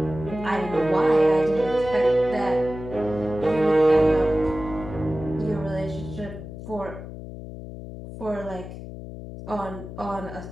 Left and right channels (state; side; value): noise; left; hum, 11 dB below the sound